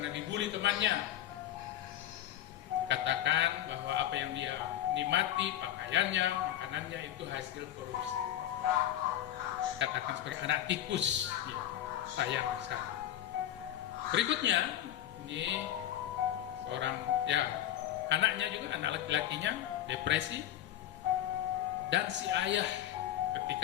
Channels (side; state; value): right; quieter; 12.3 dB